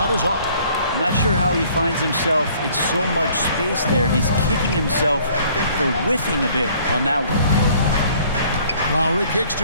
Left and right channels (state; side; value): inverted; both; correlation -0.58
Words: is off. I'm not sure how he finds himself in so much space there. He's kicking himself for whiffing a bit on that one. Lowry kicks to